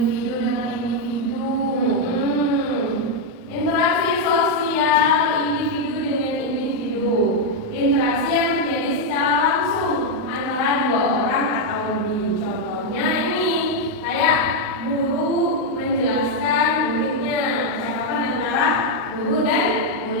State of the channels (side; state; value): right; late; 38 ms